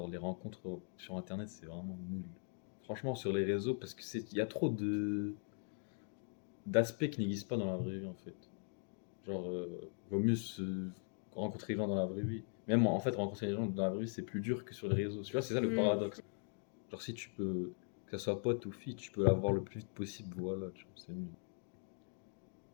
les rencontres sur Internet, c'est vraiment nul. Franchement, sur les réseaux, parce que il y a trop d'aspects qui n'existent pas dans la vraie vie, en fait. Genre, vaut mieux se rencontrer les gens dans la vraie vie. Même en fait, rencontrer les gens dans la vraie vie, c'est plus dur que sur les réseaux. Tu vois, c'est ça le Mm. paradoxe. Genre, si tu peux, que ce soit pote ou fille, tu peux l'avoir le plus vite possible, voilà, tu vois, c'est mieux.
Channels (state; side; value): silent; right; 51 dB below the other